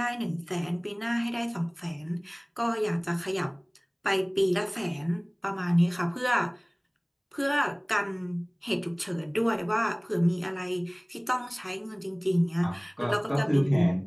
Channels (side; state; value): both; identical; correlation 1.00